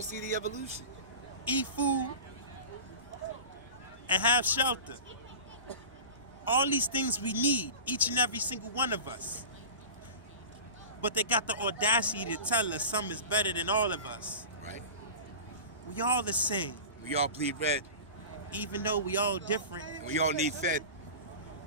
see the evolution. Eat food. And have shelter. All these things we need, each and every single one of us. But they got the audacity to tell us some is better than all of us. Right. We all the same. We all bleed red. Even though we all different. And we all need fed.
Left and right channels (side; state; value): both; inverted; correlation -0.33